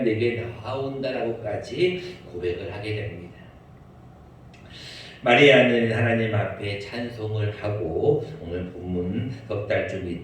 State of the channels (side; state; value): both; identical; correlation 1.00